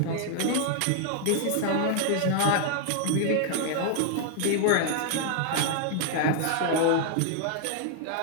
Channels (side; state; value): both; different; correlation 0.00